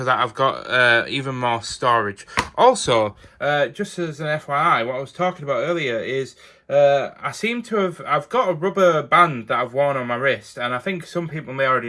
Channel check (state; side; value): identical; both; correlation 1.00